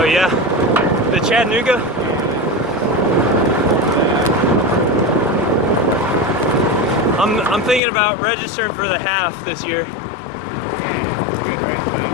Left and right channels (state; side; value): drops out; right; at 7.8 s